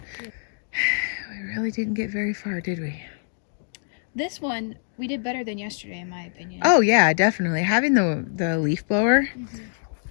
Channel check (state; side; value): silent; right; digital silence